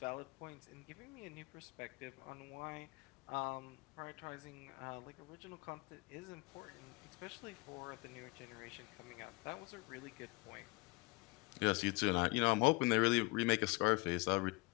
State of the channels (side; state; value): right; quieter; 25.5 dB